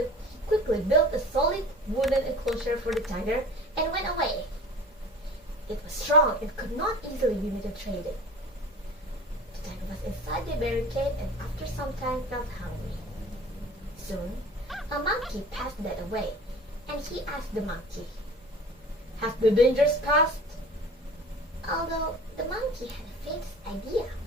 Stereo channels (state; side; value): normal; both; correlation 0.42